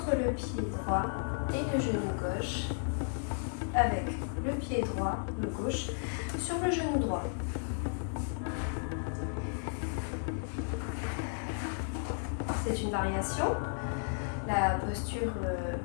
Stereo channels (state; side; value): silent; right; digital silence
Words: le pied droit et le genou gauche, avec le pied droit, le gauche, sur le genou droit. C'est une variation. La posture